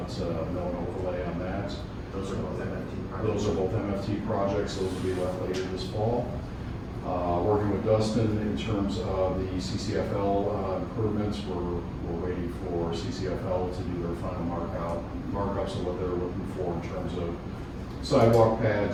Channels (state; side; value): identical; both; correlation 1.00